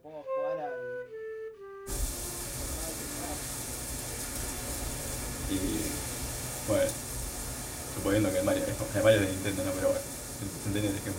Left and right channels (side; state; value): both; identical; correlation 1.00